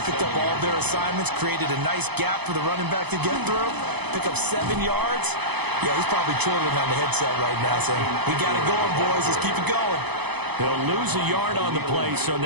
picked up all of their assignments, created a nice gap for the running back to get through, pick up 7 yards. Yeah, he's probably chortling on the headset right now saying, we got it going, boys. Let's keep it going. They'll lose a yard on the play, so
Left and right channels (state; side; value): late; left; 0.98 ms